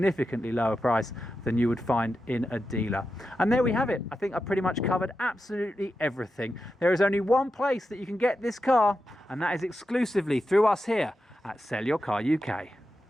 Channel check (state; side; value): normal; both; correlation 0.89